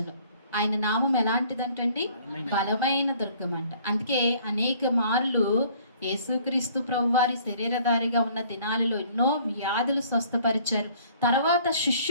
ఆయన నామం ఎలాంటిదంటండి? బలమైన దుర్గం అంట. అందుకే అనేక మార్లు యేసుక్రీస్తు ప్రభువారి శరీరధారిగా ఉన్న దినాలలో ఎన్నో వ్యాధులు స్వస్థపరిచారు. తర్వాత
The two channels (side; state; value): both; inverted; correlation -0.57